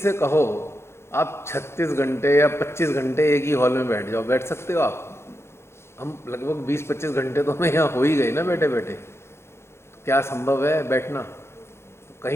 कहो आप 36 घंटे या 25 घंटे एक ही हॉल में बैठ जाओ, बैठ सकते हो आप? हम लगभग 20-25 घंटे तो हमें यहाँ हो ही गए ना बैठे बैठे। तो क्या संभव है बैठना? तो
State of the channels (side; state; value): right; late; 0.12 ms